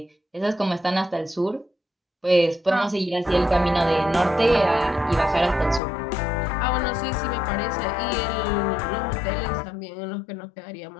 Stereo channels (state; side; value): drops out; right; at 5.8 s